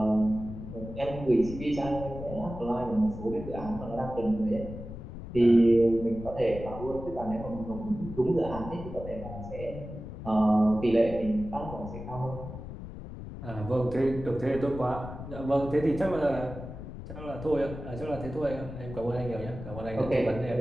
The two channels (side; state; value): left; noise; rumble, 10 dB below the sound